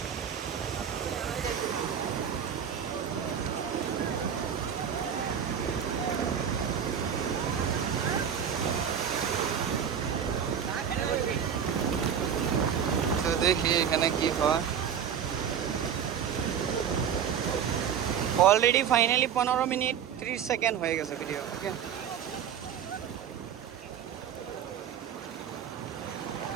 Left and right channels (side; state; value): left; quieter; 8.2 dB